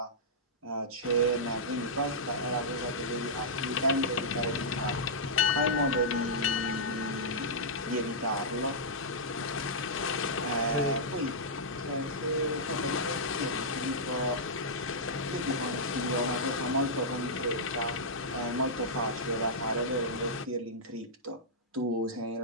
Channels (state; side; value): normal; both; correlation -0.12